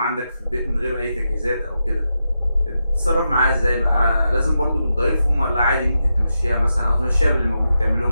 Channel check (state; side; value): inverted; both; correlation -0.87